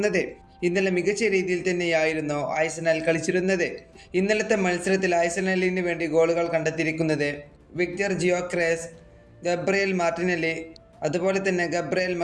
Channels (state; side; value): identical; both; correlation 1.00